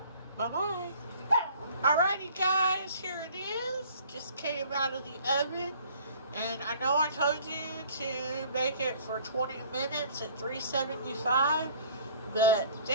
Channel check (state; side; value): inverted; both; correlation -0.52